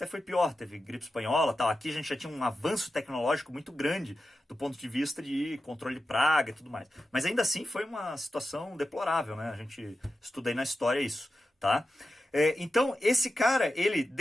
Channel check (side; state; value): both; normal; correlation 0.91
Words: foi pior, teve gripe espanhola, tal. Aqui a gente já tinha um avanço tecnológico muito grande do ponto de vista de controle de praga e tudo mais. Mas ainda assim foi uma situação deplorável, né? A gente estuda aí na história isso. Tá? Então, esse cara, ele